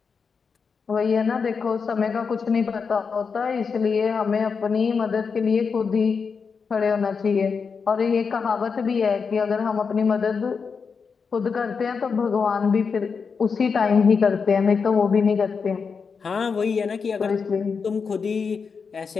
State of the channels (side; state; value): right; quieter; 5.5 dB